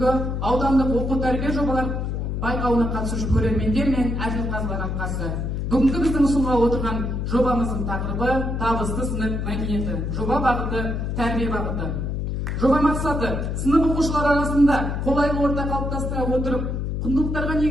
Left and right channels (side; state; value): left; noise; hum, 2 dB below the sound